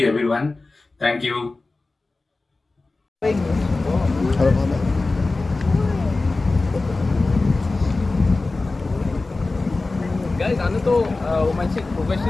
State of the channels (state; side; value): quieter; right; 3.4 dB